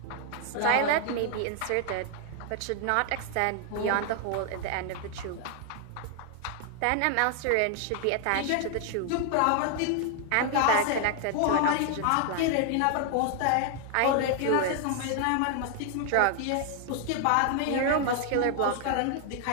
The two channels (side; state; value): both; different; correlation 0.00